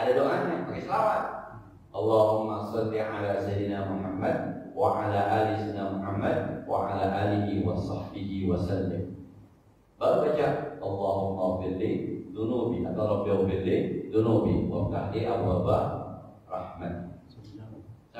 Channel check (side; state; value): both; identical; correlation 1.00